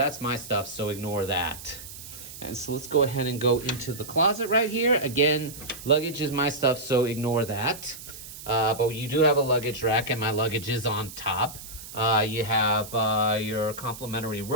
my stuff, so ignore that. And so let's go ahead and go into the closet right here. Again, luggage is my stuff, so ignore that. But you do have a luggage rack, and my luggage is on top. You have your complimentary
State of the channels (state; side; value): noise; right; hiss, 14 dB below the sound